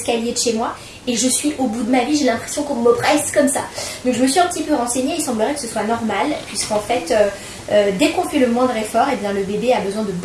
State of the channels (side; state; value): both; identical; correlation 1.00